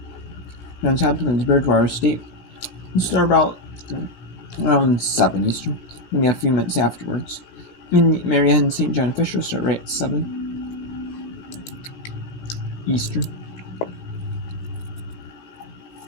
Johns Hopkins, Bridgewater State, we'll start about around 7 Eastern, maybe a few minutes afterwards. In Marianne St. John Fisher start right at 7 Eastern.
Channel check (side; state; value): right; late; 17 ms